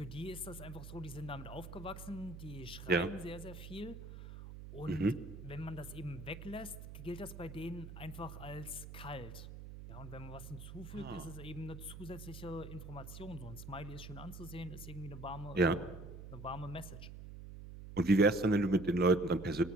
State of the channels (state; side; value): noise; right; hum, 11 dB below the sound